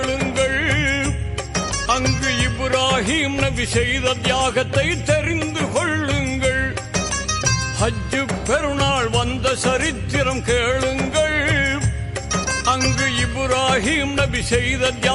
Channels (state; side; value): identical; both; correlation 1.00